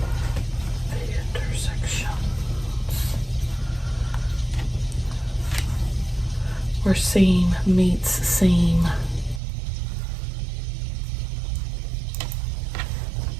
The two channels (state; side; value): drops out; left; at 9.4 s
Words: Where seam meets seam.